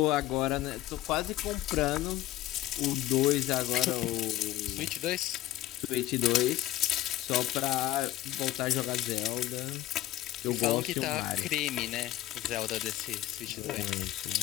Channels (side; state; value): right; quieter; 14.7 dB